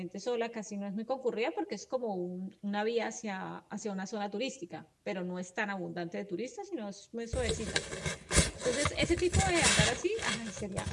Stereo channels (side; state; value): both; identical; correlation 1.00